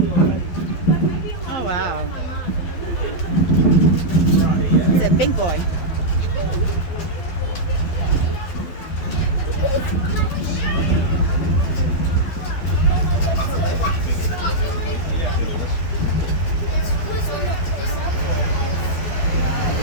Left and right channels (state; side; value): late; right; 12 ms